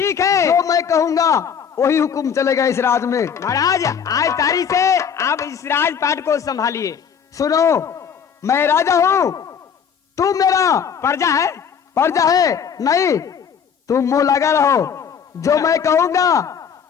है, जो मैं कहूंगा वही हुक्म चलेगा इस राज में। महाराज आज तारीख से आप इस राजपाट को संभालिए। सुनो, मैं राजा हूँ, तू मेरा प्रजा है। प्रजा है नहीं, तुम मुंह लगा रहो। जो मैं कहूंगा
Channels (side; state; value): right; quieter; 7.4 dB